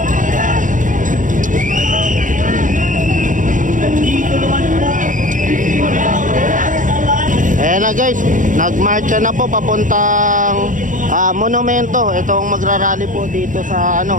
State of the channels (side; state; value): left; late; 0.38 ms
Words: Ayan na guys, nagmarcha na po papuntang monumento. Itong magrarally po dito sa